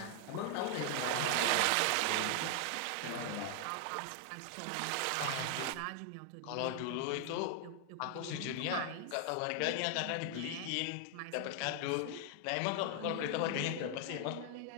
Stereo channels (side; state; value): both; different; correlation 0.00